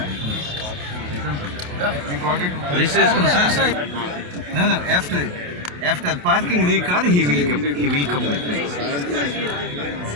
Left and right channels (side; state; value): left; late; 28 ms